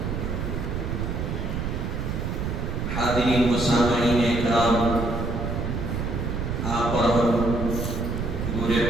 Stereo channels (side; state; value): right; noise; rumble, 2 dB below the sound